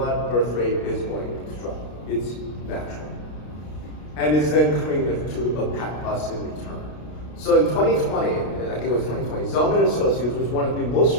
birth rate is going to drop. It's natural. And it's then coming to impact us in return. So in 2020, I think it was 2020, Zelman & Associates was one of the most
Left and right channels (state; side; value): late; right; 33 ms